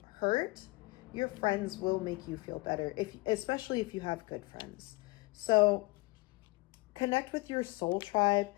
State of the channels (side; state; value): right; quieter; 24.1 dB